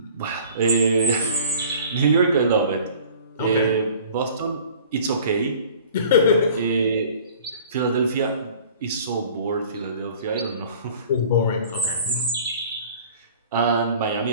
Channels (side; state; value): both; inverted; correlation -0.48